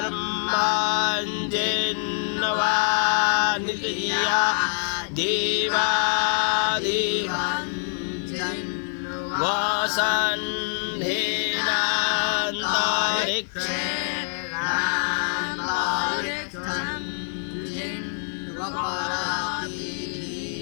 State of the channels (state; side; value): silent; right; digital silence